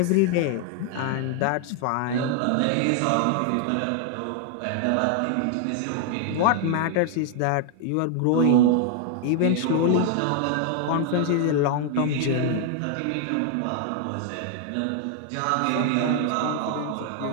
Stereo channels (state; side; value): different; both; correlation 0.00